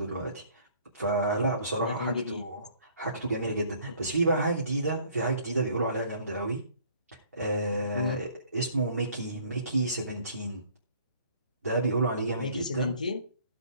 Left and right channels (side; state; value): both; inverted; correlation -0.57